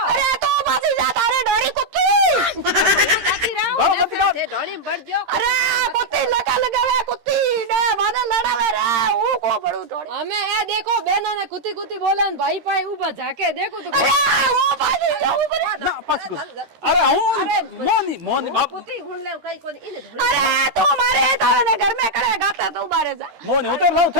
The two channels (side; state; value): left; late; 13 ms